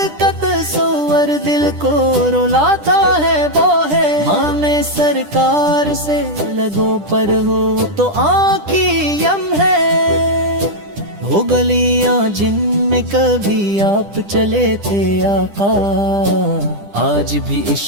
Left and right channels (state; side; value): late; left; 10 ms